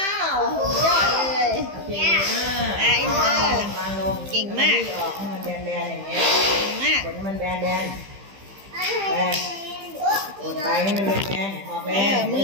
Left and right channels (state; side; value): late; left; 15 ms